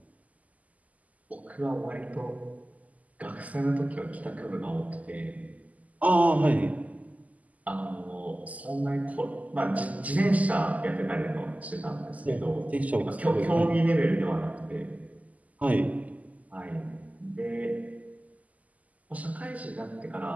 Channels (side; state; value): left; late; 0.075 ms